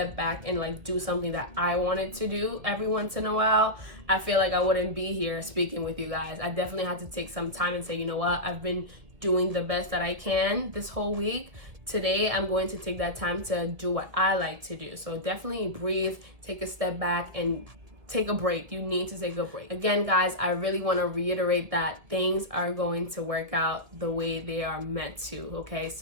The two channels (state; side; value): late; left; 1.7 ms